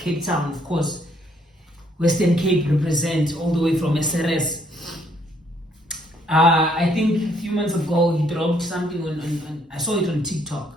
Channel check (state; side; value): normal; both; correlation 0.68